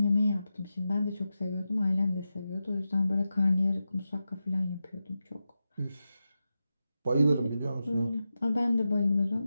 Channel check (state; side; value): inverted; both; correlation -0.91